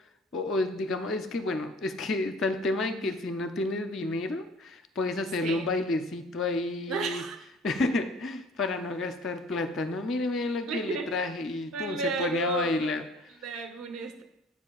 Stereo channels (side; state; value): both; normal; correlation 0.50